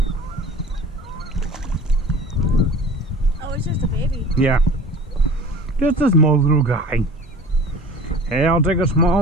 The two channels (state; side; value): normal; both; correlation 0.42